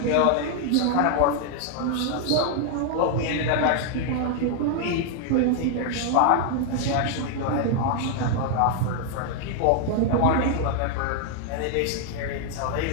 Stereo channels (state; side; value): different; both; correlation 0.00